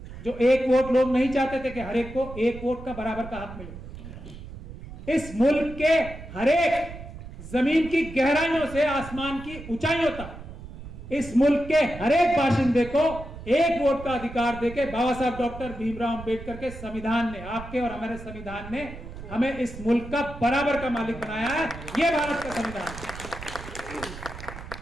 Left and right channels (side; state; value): right; noise; rumble, 13 dB below the sound